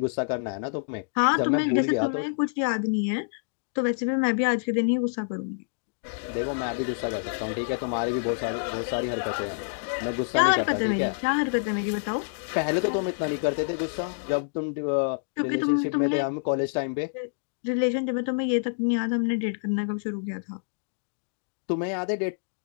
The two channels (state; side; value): silent; right; digital silence